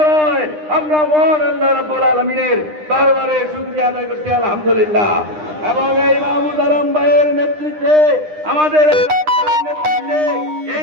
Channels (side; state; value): left; late; 9.8 ms